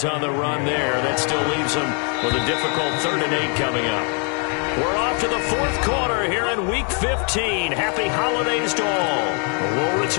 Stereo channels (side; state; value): right; quieter; 39.5 dB